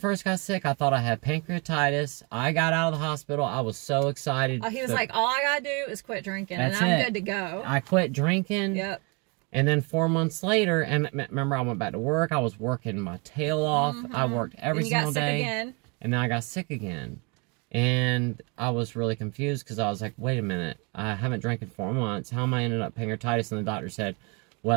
got sick, I thought I had pancreatitis. I got out of the hospital. I was so excited. He was like, all I gotta do is quit drinking, and I'm good to go. I quit drinking. Yep. And then 4 months later, and remember, I went back to work. I was working my tail off. I worked every single day. Again. And then I got sick again. And I was really confused because I was like, wait a minute. I haven't drank in 4 months. How am I ended up pancreatitis? And the doctor said,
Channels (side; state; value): left; quieter; 31.9 dB